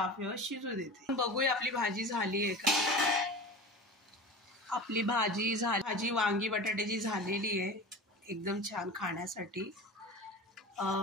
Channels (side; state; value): both; normal; correlation 0.32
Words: शिजू देते। बघूया आपली भाजी झाली आहे का। आपली भाजी वांगी बटाट्याची झालेली आहे, एकदम छान खाण्यासाठी।